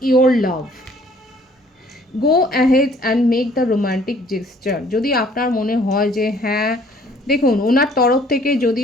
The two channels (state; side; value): normal; both; correlation 0.58